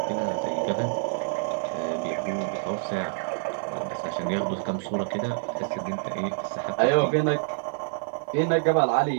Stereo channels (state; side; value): silent; left; 60 dB below the other